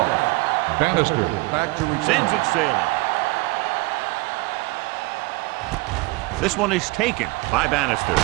Bannister back to return. Sends it sailing. This one is taken by Bannister.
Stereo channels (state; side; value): quieter; left; 23.6 dB